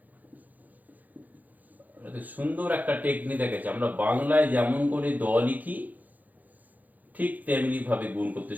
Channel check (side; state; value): left; late; 0.082 ms